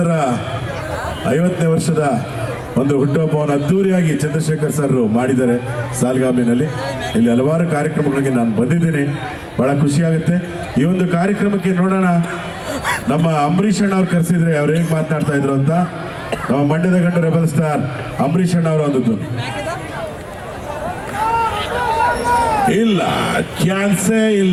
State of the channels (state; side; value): identical; both; correlation 1.00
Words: 50ನೇ ವರ್ಷದ ಒಂದು ಹುಟ್ಟುಹಬ್ಬವನ್ನು ಅದ್ದೂರಿಯಾಗಿ ಚಂದ್ರಶೇಖರ್ ಸರ್ ಮಾಡಿದ್ದಾರೆ ಸಾಲ್ಗಾಮಿನಲ್ಲಿ. ಇಲ್ಲಿ ಹಲವಾರು ಕಾರ್ಯಕ್ರಮಗಳಿಗೆ ನಾನು ಬಂದಿದ್ದೀನಿ, ಬಹಳ ಖುಷಿಯಾಗುತ್ತೆ. ಈ ಒಂದು ಕಾರ್ಯಕ್ರಮಕ್ಕೆ ನೋಡೋಣ, ನಮ್ಮ ಅಂಬರೀಷ್ ಅಣ್ಣ ಅವ್ರು ಕರೆಸಿದ್ರೆ ಅವ್ರು ಹೇಗೆ ಮಾತನಾಡ್ತಾ ಇದ್ರು ಅಂತ. ನಮ್ಮ ಮಂಡ್ಯದ ಗಂಡು ರೆಬಲ್ ಸ್ಟಾರ್ ಅಂಬರೀಷ್ ಅಣ್ಣ ಅವರು ಅಂದದ್ದು. ಇಲ್ಲ, ಚಾನ್ಸೇ